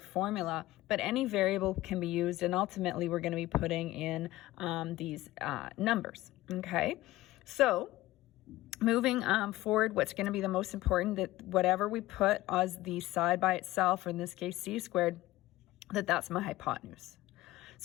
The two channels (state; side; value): quieter; right; 17.1 dB